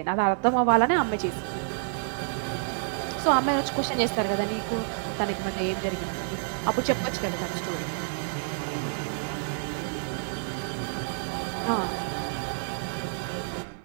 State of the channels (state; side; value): silent; left; digital silence